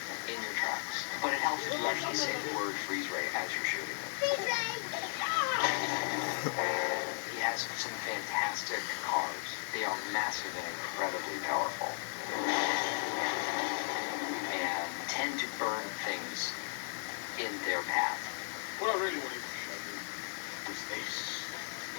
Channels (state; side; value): silent; right; digital silence